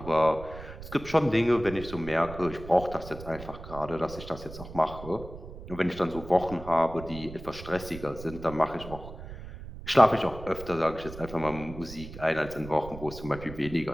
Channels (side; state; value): right; noise; rumble, 13 dB below the sound